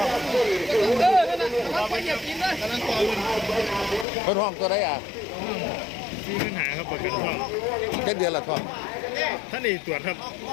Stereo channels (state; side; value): drops out; right; at 4.0 s